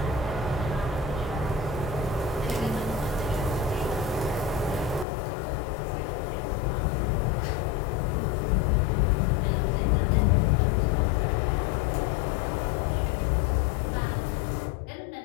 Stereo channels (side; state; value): right; drops out; at 5.1 s